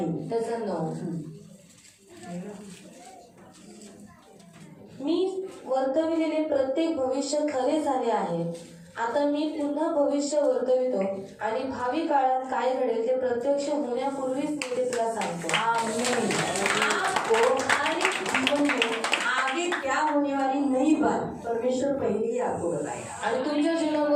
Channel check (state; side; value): identical; both; correlation 1.00